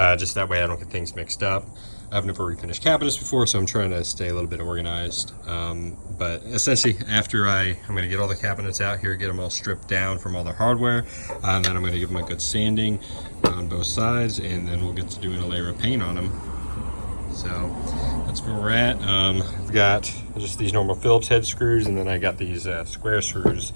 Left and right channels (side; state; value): both; inverted; correlation -1.00